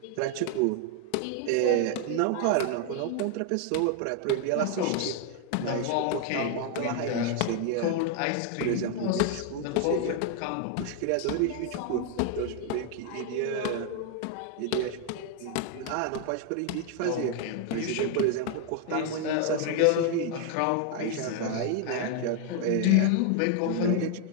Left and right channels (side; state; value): both; different; correlation 0.00